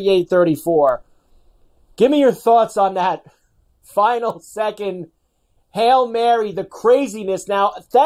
Give me your thoughts on that final second Hail Mary, the craziness. Now,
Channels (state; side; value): identical; both; correlation 1.00